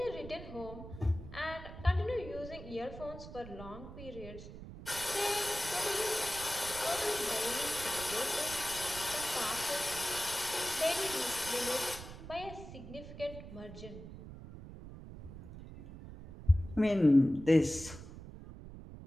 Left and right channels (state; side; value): noise; right; rumble, 13 dB below the sound